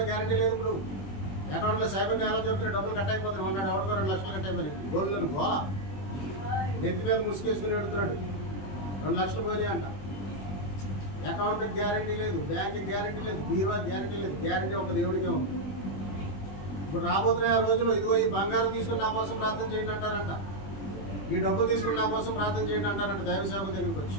గ్యారెంటీ లేదు. ఇప్పుడు అకౌంట్లో సైబర్ నేల జరుగుతున్నాయి, డబ్బులు కట్ అయిపోతున్నాయి. ఉన్నాడు ఎవరికో 2 లక్షలు కట్ అయిపోయినాయి. గోల్డ్లను గోల నెత్తి మీద ముసుకేసుకుని పెడుతున్నాడు, 2 లక్షలు పోయి అంట. అకౌంట్కి గ్యారెంటీ లేదు, బ్యాంక్కి గ్యారెంటీ లేదు, బీరువాకి గ్యారెంటీ లేదు. గ్యారెంటీ ఒక దేవుడికే ఉంది. ఇప్పుడు రాబోతున్న రోజులు ఇదిగో ఈ బంగారం తీసుకుని నా కోసం ప్రార్థన చేయండి అంటారంట, ఈ డబ్బులు తీసుకుని నా కోసం ప్రార్థన చేయండి అంటారంట దైవ సేవకుల దగ్గరికి వచ్చి.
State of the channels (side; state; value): right; late; 21 ms